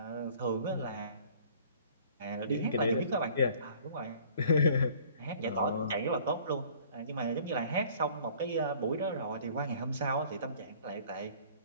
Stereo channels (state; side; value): inverted; both; correlation -0.52